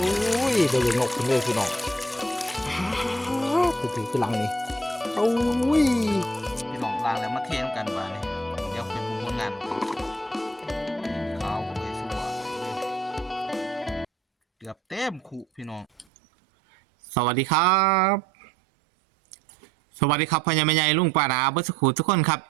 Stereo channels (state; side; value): drops out; left; at 16.1 s